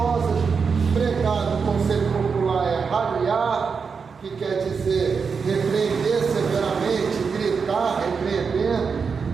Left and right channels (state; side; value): quieter; left; 5.6 dB